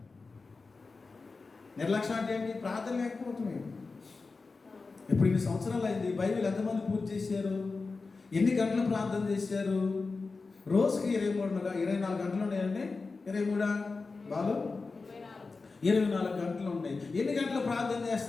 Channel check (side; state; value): right; quieter; 4.1 dB